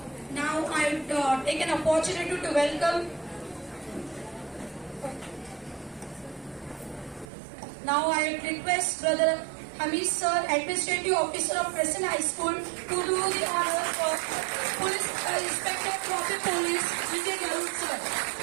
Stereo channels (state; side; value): drops out; left; at 7.3 s